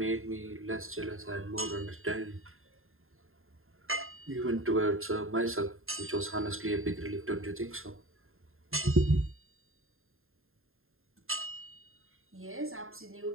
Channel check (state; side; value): late; left; 0.61 ms